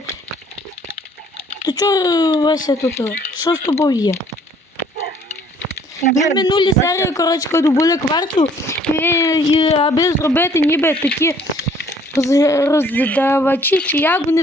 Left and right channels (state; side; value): normal; both; correlation 0.59